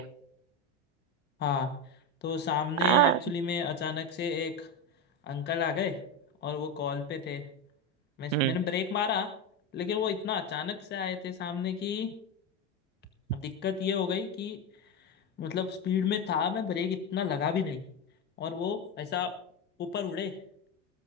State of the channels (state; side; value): normal; both; correlation 0.14